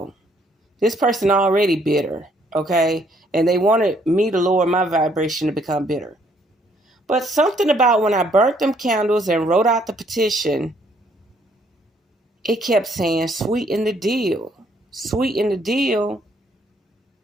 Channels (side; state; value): both; normal; correlation 0.67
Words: This person already bitter, okay? And they wanted me to lower my vibration to become bitter. But something about when I burnt them candles and wrote out the petition, it kept saying, sweeten the deal. Sweeten the deal.